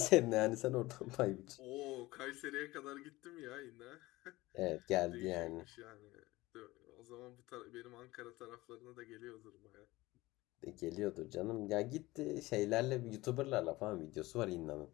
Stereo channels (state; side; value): quieter; right; 19.5 dB